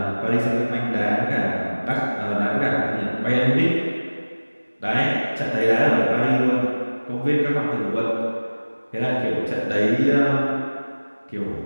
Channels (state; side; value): inverted; both; correlation -1.00